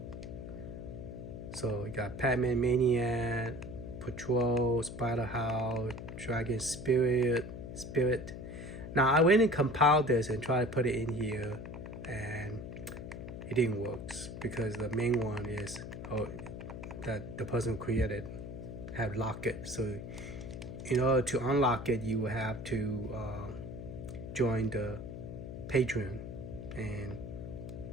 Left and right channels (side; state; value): left; noise; hum, 9 dB below the sound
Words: So we got Pac-Man Maniac, Patrol, Splatterhouse, Dragon Spirit. Now I went and compiled this and tried to put it in here, and it didn't work because the main one is that the person who created have locked it. So in order to unlock it, you will have to join the Patreon and